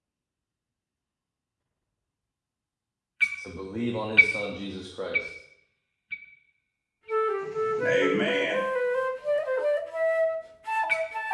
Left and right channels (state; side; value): identical; both; correlation 1.00